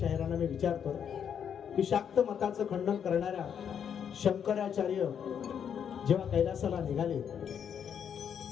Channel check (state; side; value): quieter; right; 8.1 dB